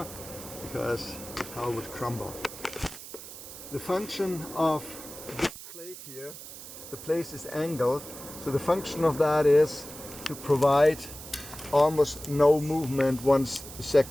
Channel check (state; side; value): noise; right; hiss, 13 dB below the sound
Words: because the tower would crumble. The function of this plate here, the plate is angled, so the function of that is to provide almost no movement once